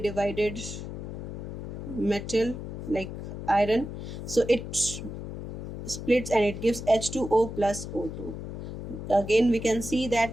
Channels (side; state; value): left; noise; hum, 7 dB below the sound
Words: metal like iron, so it splits and it gives H2O plus O2. Again we can see